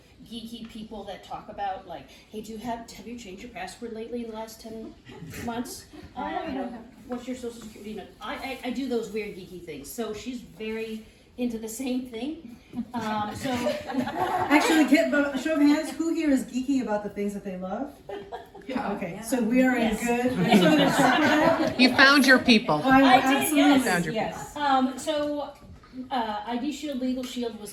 geeky people that talk about, like, hey, have you changed your password lately in the last 10 months? You know, what's your social security? You know, I do those weird geeky things. So she's very into the same thing. Actually, show of hands, who here is geeky about the things that they love? Yeah. Okay, so we are in good. You found your people. I did, absolutely yes. Found your people. ID Shield, Legal Shield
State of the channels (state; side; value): identical; both; correlation 1.00